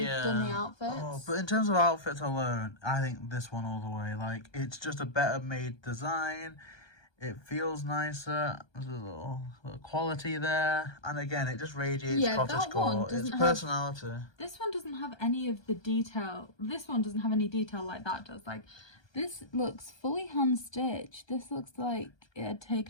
done the outfits. Oh, but in terms of outfits alone, I think this one all the way. Like, it's just a better made design. It feels nicer. There's a little quality there. And again, it just radiates cottagecore. It's personality. This one doesn't have any of the detail. This one doesn't have any detail like that does. Like, this looks fully hand-stitched. This looks like it had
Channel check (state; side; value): late; right; 1.2 ms